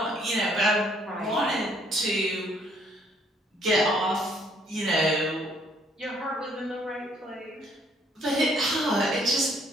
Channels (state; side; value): normal; both; correlation 0.65